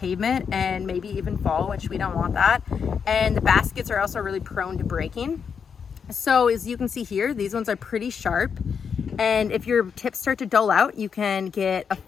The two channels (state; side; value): quieter; right; 6.6 dB